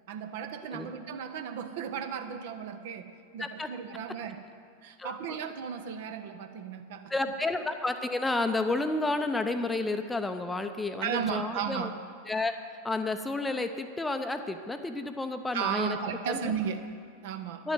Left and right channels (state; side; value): normal; both; correlation 0.50